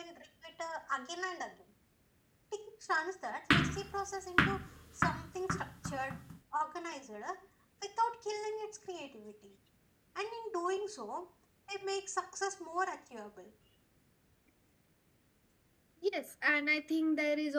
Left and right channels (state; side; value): identical; both; correlation 1.00